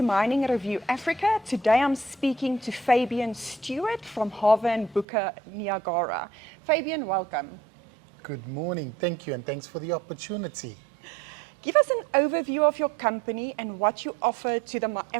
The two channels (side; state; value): left; drops out; at 5.1 s